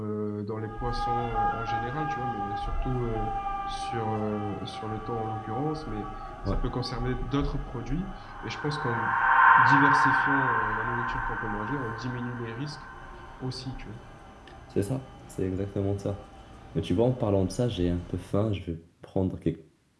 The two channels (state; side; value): identical; both; correlation 1.00